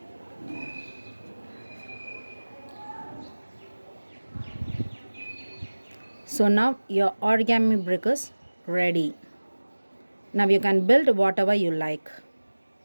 So now your origami brick is ready. Now you can build whatever you like.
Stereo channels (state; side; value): inverted; both; correlation -1.00